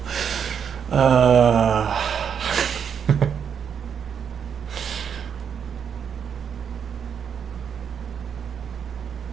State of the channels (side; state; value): left; quieter; 7.5 dB